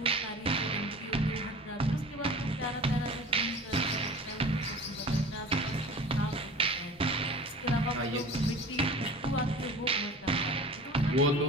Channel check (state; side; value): normal; both; correlation 0.39